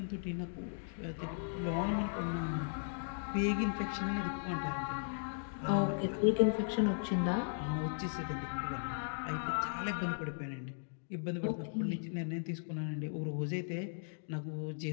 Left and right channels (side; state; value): right; silent; digital silence